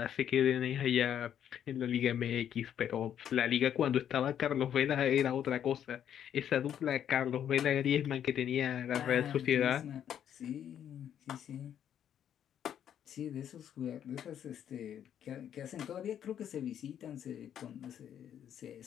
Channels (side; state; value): right; quieter; 9.6 dB